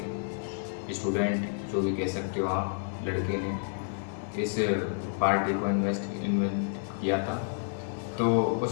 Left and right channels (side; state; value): right; silent; digital silence